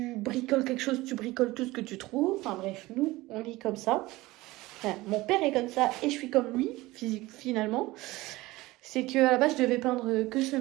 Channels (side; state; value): left; quieter; 19.4 dB